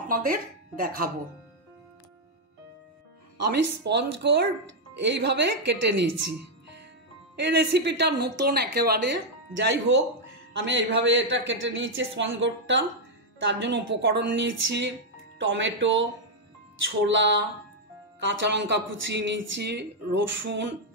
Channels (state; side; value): normal; both; correlation -0.02